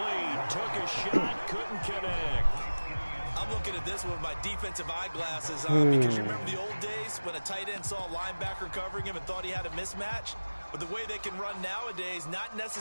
Took a shot, couldn't connect. I'm looking at this with my defensive eyeglasses on because you remember the old days when a tight end saw a linebacker covering him and thought he had a mismatch? But the way they can run nowadays, not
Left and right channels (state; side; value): inverted; both; correlation -1.00